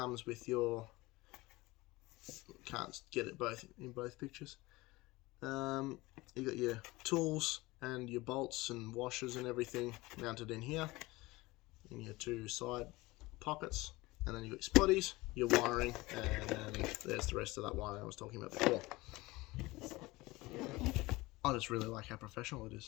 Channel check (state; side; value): quieter; right; 21.0 dB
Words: with your, can't get it both in both pictures. You got your tools and your bolts and washers and everything mounted in here in your 2 side pockets, and then you got your spotties, your wiring, and there's the rest of that wiring I was talking about before. I just really like how professional it